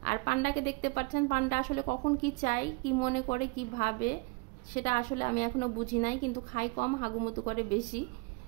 আর পান্ডাকে দেখতে পাচ্ছেন। পান্ডা আসলে কখন কি চায়, কি মনে করে, কি ভাবে, সেটা আসলে আমি এখনো বুঝি নাই, কিন্তু খাই কম, হাগুমুতু করে বেশি,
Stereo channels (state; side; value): quieter; left; 28.9 dB